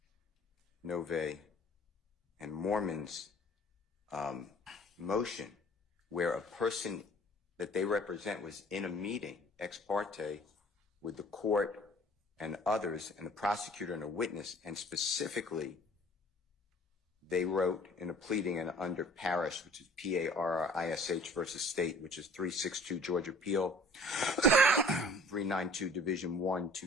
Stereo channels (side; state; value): both; normal; correlation 0.50